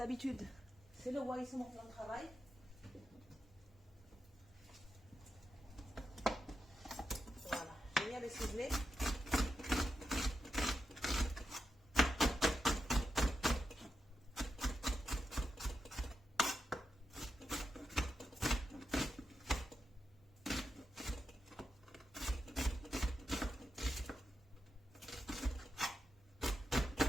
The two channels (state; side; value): normal; both; correlation 0.87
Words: c'est le roi, c'est mon plan de travail. Voilà, j'ai mis à le ciseler.